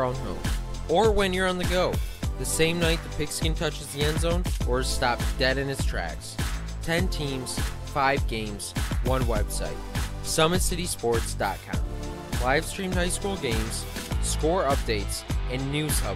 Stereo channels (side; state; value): both; identical; correlation 1.00